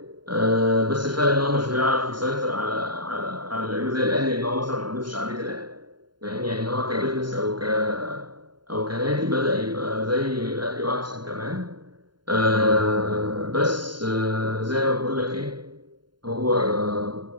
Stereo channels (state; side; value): late; left; 0.71 ms